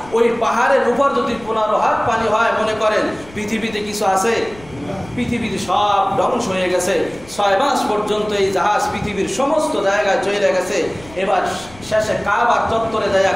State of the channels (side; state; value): left; noise; rumble, 21 dB below the sound